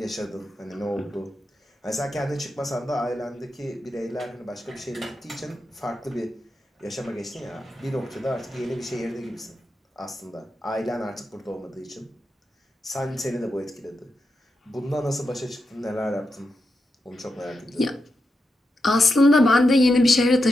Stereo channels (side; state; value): both; normal; correlation 0.87